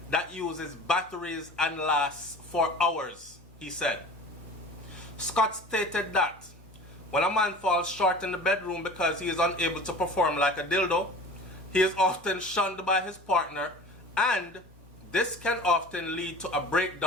that uses batteries and lasts for hours, he said. Scott stated that when a man falls short in the bedroom because he is unable to perform like a dildo, he is often shunned by his partner, and this can often lead to a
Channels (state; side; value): normal; both; correlation 0.40